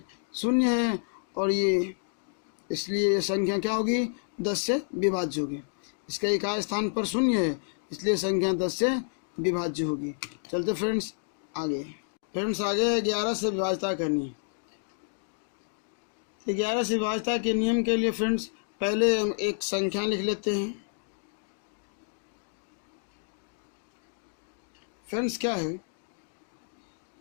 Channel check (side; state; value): right; silent; digital silence